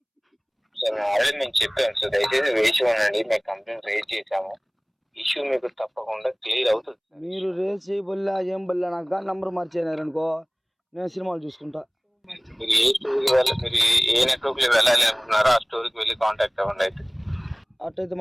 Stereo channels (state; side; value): identical; both; correlation 1.00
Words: సార్ ఆల్రెడీ నేను చెప్పాను సార్, దయచేసి వేసి ఉండండి. మేము కంప్లైంట్ రేజ్ చేసాము, ఇష్యూ మీకు తప్పకుండా క్లియర్ అవుతుంది. మీరు రేజ్ చేయబల్లా ఏం బల్లా, నాకు కానీ నంబర్ మార్చేనారనుకో నేను సినిమాలు చూసుకుంటా. మీరు ఏ స్టోర్కి మీరు ఏ నెట్వర్క్ లో వెళ్ళాలి అనుకున్నారో ఆ స్టోర్కి వెళ్ళి కాంటాక్ట్ అవ్వండి. అయితే అట్టయితే